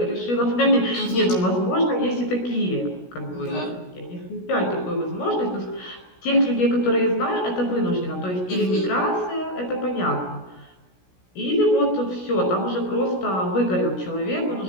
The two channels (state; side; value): late; right; 16 ms